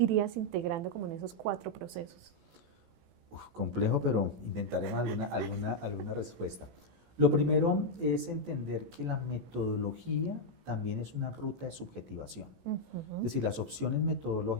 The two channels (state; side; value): late; left; 18 ms